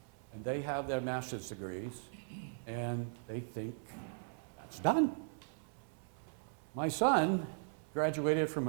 and they have their master's degrees, and they think it's done. My son graduated from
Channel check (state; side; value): silent; left; 52 dB below the other